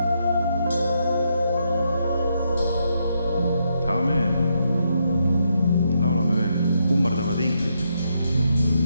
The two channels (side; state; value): both; inverted; correlation -0.79